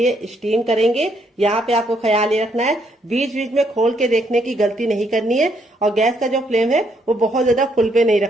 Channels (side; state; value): both; normal; correlation 0.73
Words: स्टीम करेंगे। यहाँ पे आपको ख्याल ये रखना है, बीच बीच में खोल के देखने की गलती नहीं करनी है। और गैस का जो फ्लेम है वो बहुत ज्यादा फुल पे नहीं